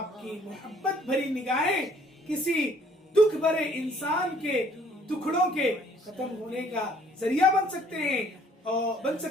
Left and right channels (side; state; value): both; normal; correlation 0.60